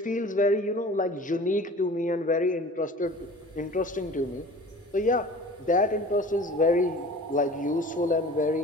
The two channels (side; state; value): both; normal; correlation 0.42